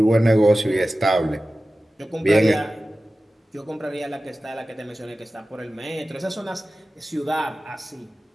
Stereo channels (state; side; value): normal; both; correlation 0.95